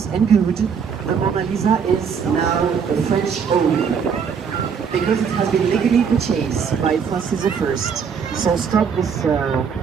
and good, the Mona Lisa is now a French owned, because it has been legally purchased by Francis I. So stop this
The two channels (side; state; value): left; quieter; 6.6 dB